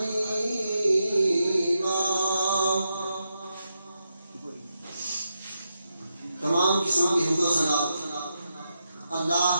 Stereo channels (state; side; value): inverted; both; correlation -0.85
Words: تمام قسم کی حمد و ثنا اللہ